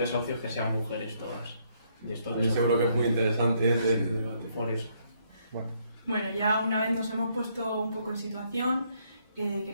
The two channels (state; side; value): inverted; both; correlation -0.71